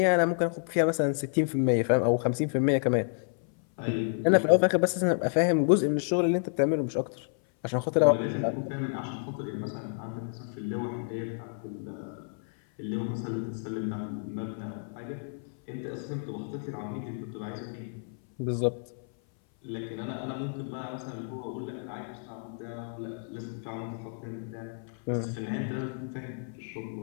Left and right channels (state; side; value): silent; right; 57 dB below the other